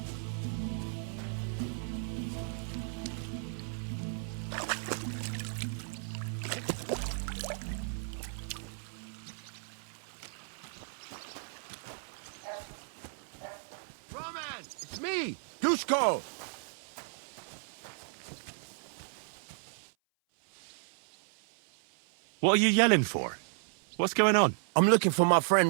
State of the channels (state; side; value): silent; left; 55 dB below the other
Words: It's me, Dusko! What are you yelling for? What's going on? I'm looking for my